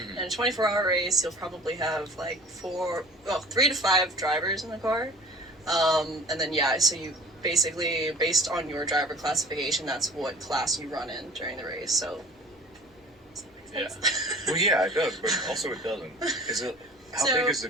In a 24-hour race, you'll probably have like 3 to 5 drivers in the car. And then, so you basically, based on your driver classification, that's what class you run in during the race. So, Yeah. Well, yeah, it does, but also it doesn't. Is it? How So- big is the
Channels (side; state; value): both; normal; correlation 0.44